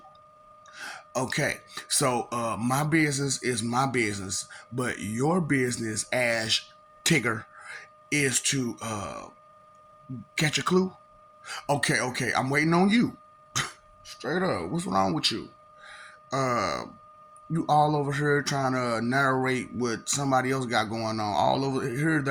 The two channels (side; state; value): both; identical; correlation 1.00